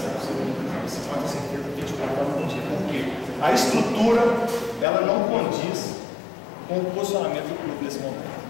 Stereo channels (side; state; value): right; drops out; at 4.9 s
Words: segunda divisão. Você pode ter certeza que a gente vai estar no dia. Porque a estrutura, ela não condiz com o posicionamento do clube nesse momento.